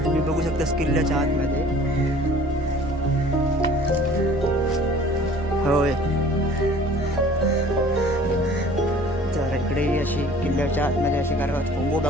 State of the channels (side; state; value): both; normal; correlation 0.50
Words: तुम्ही बघू शकतास किल्ल्याच्या आतमध्ये. होय तर इकडे अशी किल्ल्याच्या आतमध्ये अशी घरं आहेत. कोंबो